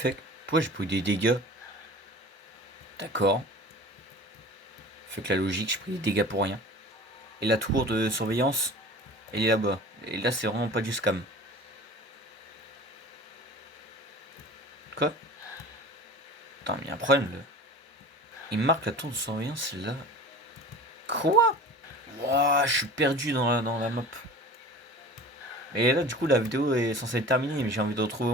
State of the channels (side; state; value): both; normal; correlation 0.40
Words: Pourquoi j'ai pris des dégâts? D'accord. Fait que la logique, j'ai pris des dégâts pour rien. Et la tour de surveillance, elle est là-bas. Et là, c'est vraiment pas du scam. Quoi? Attends, mais il y a un problème là. Il me marque la tour de surveillance, c'est là. Quoi? Wouah, je suis perdu dans la map. Et là, du coup, la vidéo est censée être terminée, mais j'ai envie de retrouver au